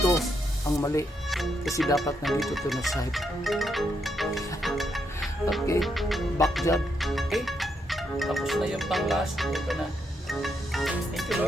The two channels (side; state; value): both; normal; correlation 0.78